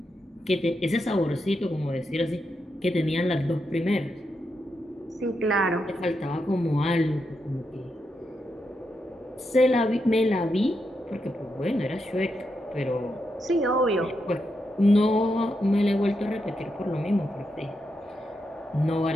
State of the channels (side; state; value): both; normal; correlation 0.84